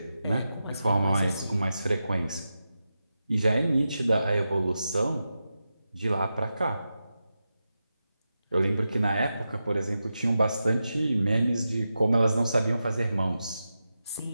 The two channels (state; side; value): inverted; both; correlation -0.90